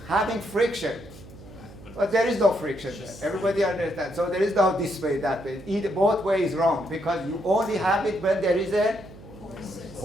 having friction, but there is no friction there. Everybody understands. So there is no this way, that way. Either both ways is wrong, because you only have it when there is a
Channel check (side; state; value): right; noise; hum, 18 dB below the sound